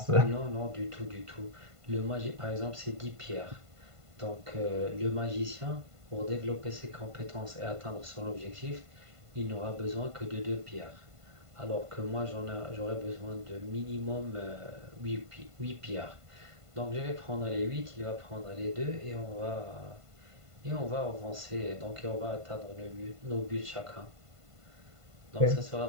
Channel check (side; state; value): left; late; 1.5 ms